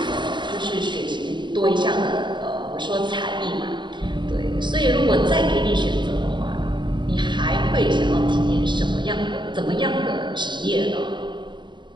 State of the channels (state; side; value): late; left; 0.23 ms